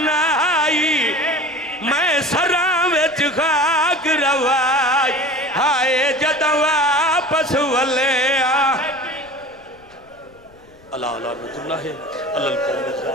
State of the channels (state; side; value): noise; left; rumble, 28 dB below the sound